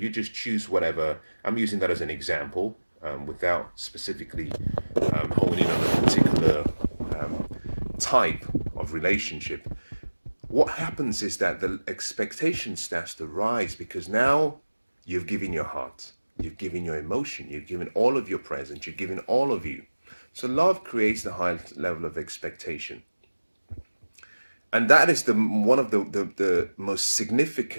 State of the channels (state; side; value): inverted; both; correlation -1.00